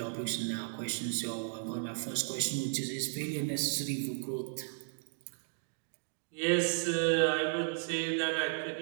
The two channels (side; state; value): left; silent; digital silence